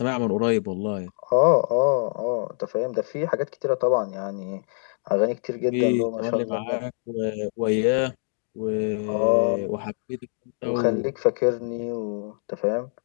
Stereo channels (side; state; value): right; silent; digital silence